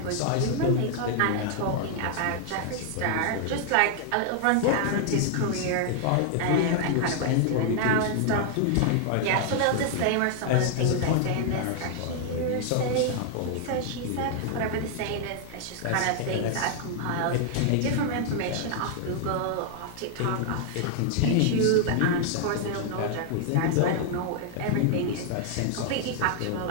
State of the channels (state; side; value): different; both; correlation 0.00